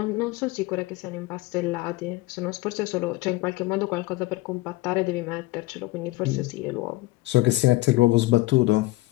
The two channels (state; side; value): quieter; right; 19.6 dB